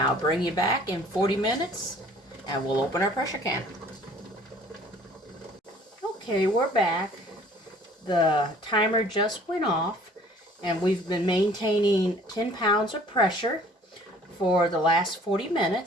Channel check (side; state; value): both; normal; correlation 0.54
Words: I'll bring you back in 40 minutes and we'll open our pressure canner. Okay, we're back. The timer just went off and we've been maintaining 10 pounds of pressure for the last 40